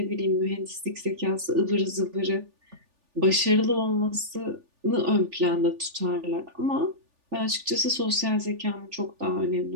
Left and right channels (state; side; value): late; left; 3.4 ms